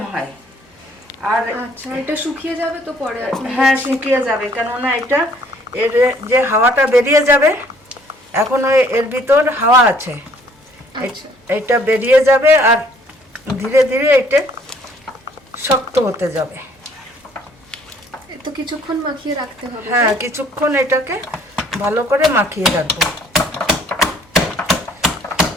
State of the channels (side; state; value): both; normal; correlation 0.60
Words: হয়। আর আচ্ছা, এটা শুকিয়ে যাবে তো পরে? হ্যাঁ, শুকিয়ে যাবে, কেননা এটা এর যে হাওয়াটা বেরিয়ে যাবে, এখন এর ভিতর হাওয়া আছে। আচ্ছা, এটা বেরিয়ে যাবে আর ধীরে ধীরে এটা শক্ত হতে যাবে। তো কিছুক্ষণ মাখিয়ে রাখতে হবে। হ্যাঁ, কিছুক্ষণ এটাকে ভালো করে মাখিয়ে রাখবো।